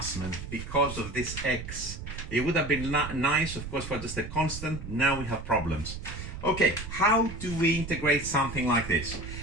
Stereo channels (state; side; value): noise; right; rumble, 9 dB below the sound